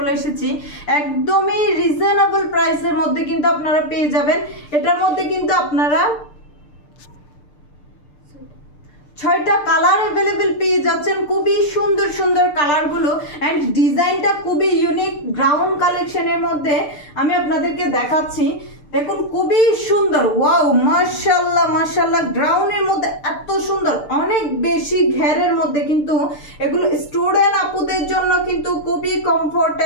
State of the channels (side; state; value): right; late; 6.7 ms